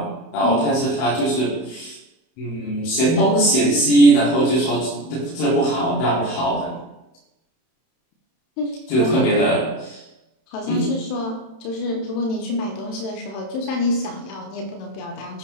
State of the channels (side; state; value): right; late; 31 ms